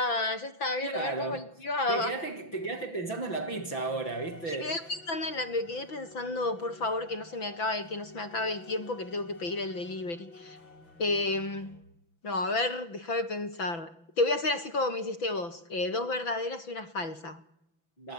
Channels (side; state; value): right; late; 6.0 ms